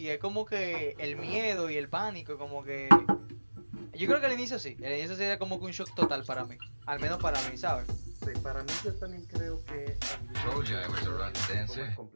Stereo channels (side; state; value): both; inverted; correlation -1.00